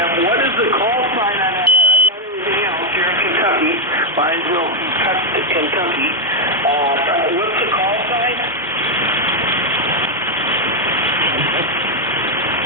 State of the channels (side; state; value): both; normal; correlation 0.00